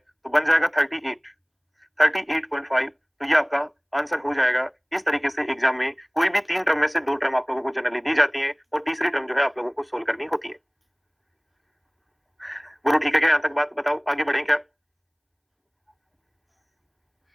बन जाएगा 38.5। तो ये आपका आंसर हो जाएगा। इस तरीके से एग्जाम में कोई भी 3 टर्म में से 2 टर्म आप लोगों को जनरली दी जाती है और तीसरी टर्म जो है आप लोगों को सोल्व करनी होती है। बोलो ठीक है क्या, यहाँ तक बात बताओ, आगे बढ़ें क्या।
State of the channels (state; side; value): identical; both; correlation 1.00